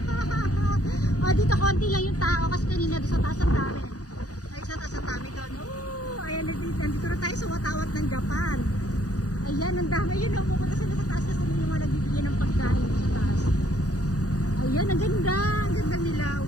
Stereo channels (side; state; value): right; late; 0.67 ms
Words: Oh, dito konti lang yung tao kasi kanina doon sa taas ang dami. Ay, sa taas ang dami doon. Oh, ayan, nandito na tayo sa watawat ng Japan. Ayan, ang dami. Ayun, pupunta sila sa taas kasi yung mga nagbibigay ng pagkain sa taas. Ayan, ang ganda. Ang ganda nila.